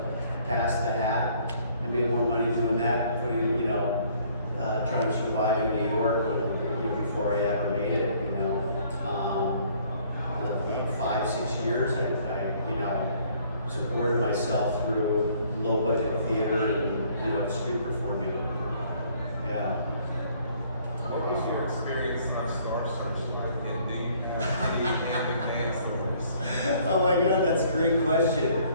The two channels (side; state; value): both; inverted; correlation -0.60